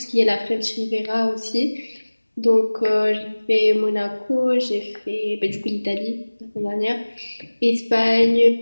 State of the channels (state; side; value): inverted; both; correlation -1.00